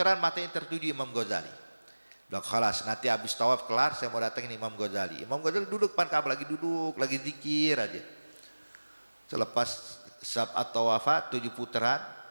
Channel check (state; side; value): inverted; both; correlation -1.00